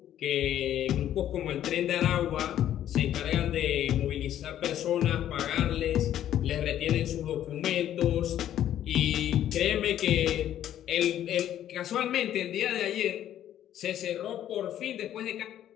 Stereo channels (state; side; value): quieter; right; 11.4 dB